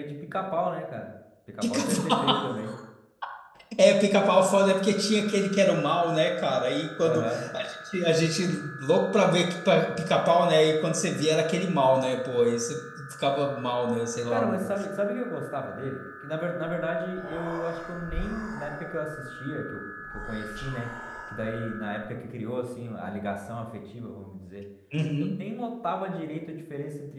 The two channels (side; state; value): both; identical; correlation 1.00